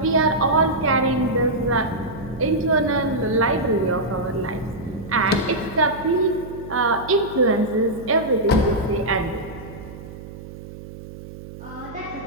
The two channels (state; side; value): noise; right; hum, 14 dB below the sound